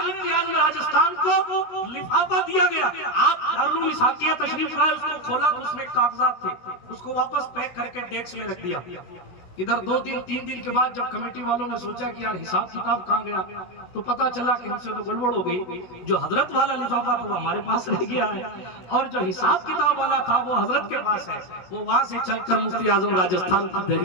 اعظم راجستھان کو لفافہ دیا گیا, آپ دارالعلوم اسحاقیہ تشریف لائے, اس کو کھولا تو اس میں کاغذات تھے, اس کو واپس پیک کر کے ڈیسک میں رکھ دیا. ادھر 2-3 دن کے بعد جب کمیٹی والوں نے سوچا کہ یار حساب کتاب کہاں گیا, تو پتا چلا کہ ہم سے تو گڑبڑ ہو گئی. جو حضرت والا لفافہ تھا وہ ہمارے پاس رہ گیا ہے, اور جو حساب کتاب والا تھا وہ حضرت کے پاس ہے. وہ وہاں سے چل کر مفتی اعظم راجستھان کی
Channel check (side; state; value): right; late; 16 ms